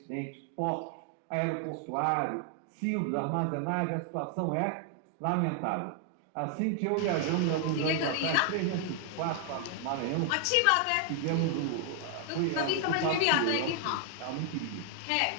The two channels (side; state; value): both; different; correlation 0.00